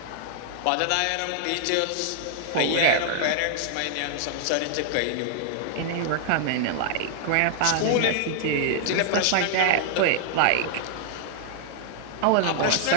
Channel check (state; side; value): different; both; correlation -0.01